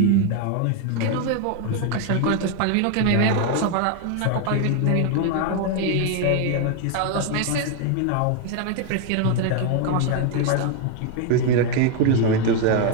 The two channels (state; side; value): different; both; correlation 0.01